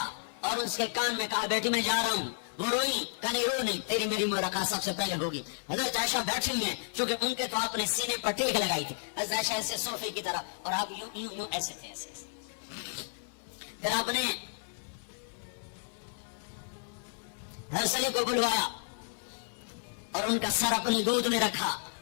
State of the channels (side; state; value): right; silent; 56 dB below the other